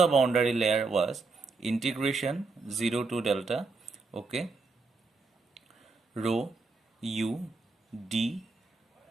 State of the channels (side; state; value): left; quieter; 4.0 dB